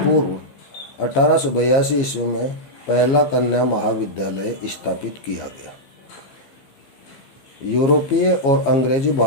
1882 ईस्वी में पहला कन्या महाविद्यालय स्थापित किया गया। यूरोपीय और अंग्रेजी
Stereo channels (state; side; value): late; right; 15 ms